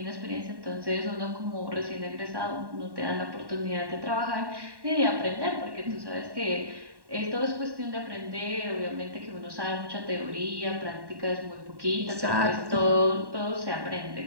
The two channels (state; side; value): late; left; 1.1 ms